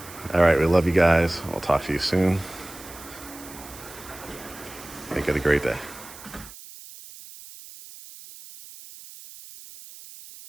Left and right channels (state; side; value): noise; right; hiss, 17 dB below the sound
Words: All right, we love you guys. I'll talk to you soon. Make it a great day.